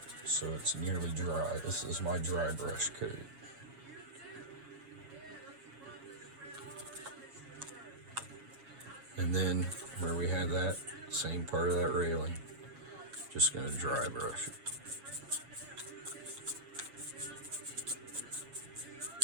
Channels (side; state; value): left; late; 7.3 ms